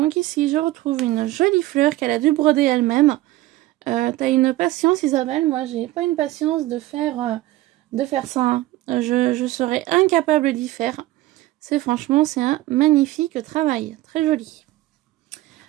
ici, je retrouve une jolie fleur qu'elle a dû broder elle-même. T'as une patience, Isabelle. Moi, j'ai pas une patience de faire ça. Hein. Je serais incapable d'y faire. Franchement, c'est un magnifique travail. Très joli.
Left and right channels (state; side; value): quieter; left; 16.8 dB